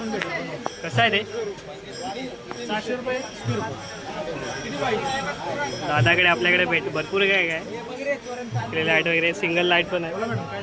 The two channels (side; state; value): both; identical; correlation 1.00